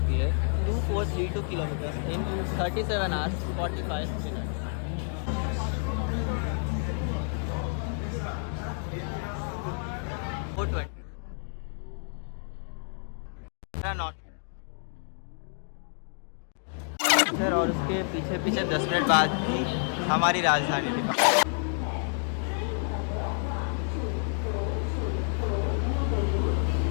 है 2432 kilometre in 37 hours 45 minute. Not sir, और उसके पीछे पीछे 10 मिनट बाद ही हमारी राजधानी थी।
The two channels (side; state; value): right; silent; 58 dB below the other